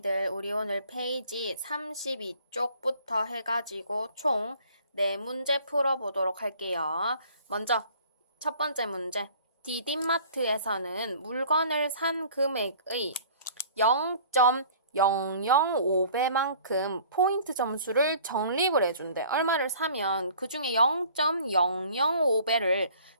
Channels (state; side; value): inverted; both; correlation -0.51